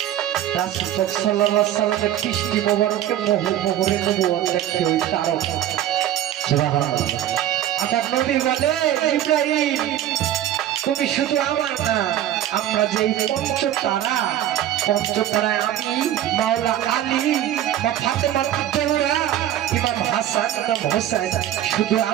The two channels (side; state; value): left; quieter; 12.0 dB